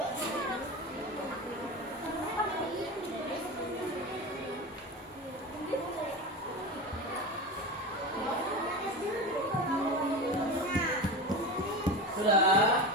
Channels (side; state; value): both; normal; correlation 0.25